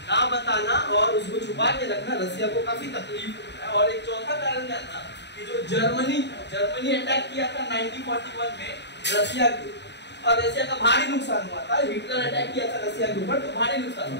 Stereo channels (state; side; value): late; right; 0.50 ms